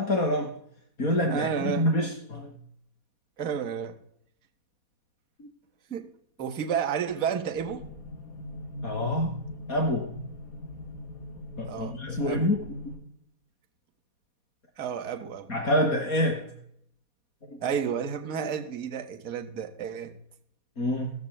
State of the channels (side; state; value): right; late; 4.2 ms